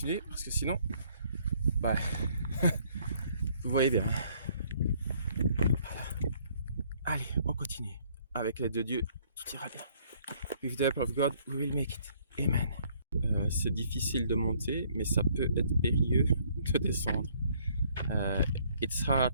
parce que sinon, bah, vous voyez bien. Allez, on continue. Avec l'aide de Dieu, tout ira bien. With the help of God, we will make it. Amen. C'est difficile de monter, mais ça peut être périlleux de descendre. It's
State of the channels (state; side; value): inverted; both; correlation -0.63